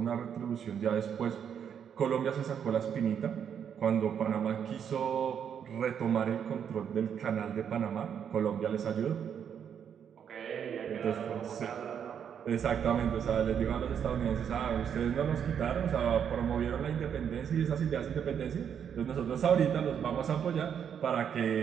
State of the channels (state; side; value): quieter; left; 8.1 dB